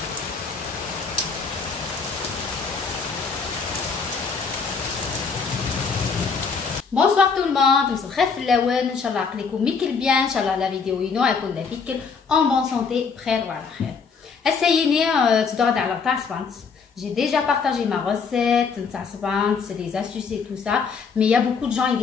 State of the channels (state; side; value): quieter; right; 5.4 dB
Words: Bonsoir tout le monde, مساء الخير في اللون. ان شاء الله عقلكم ميكل بيان. ان شاء الله لا فيديو ينو يكون لافيكل en bonne santé بخير وعلى خير. هسايني تدور على تاع سبانت. J'ai déjà partagé ma recette تاع سبانت, les astuces et tout ça, mais il y a beaucoup de gens